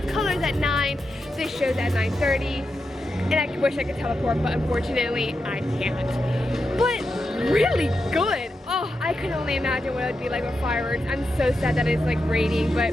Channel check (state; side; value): normal; both; correlation 0.87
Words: of Colors at 9, this show's at 9:30, and I wish I could teleport, but unfortunately I can't. But really good. Oh, I could only imagine what it would be like with fireworks. I'm so sad that it's like raining,